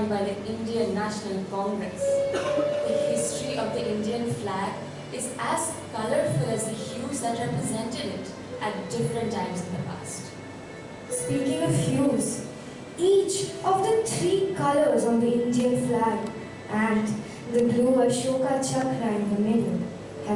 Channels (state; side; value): identical; both; correlation 1.00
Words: by the Indian National Congress. The history of the Indian flag is as colorful as the hues that represented it at different times in the past. Speaking of hues, each of the three colors on the Indian flag and the blue Ashoka chakra in the middle